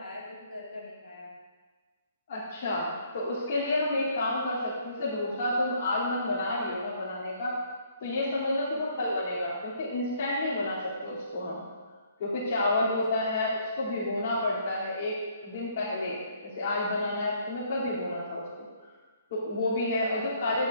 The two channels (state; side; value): inverted; both; correlation -0.65